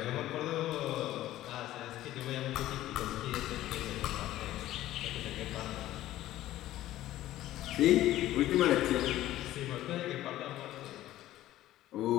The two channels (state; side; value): quieter; right; 14.5 dB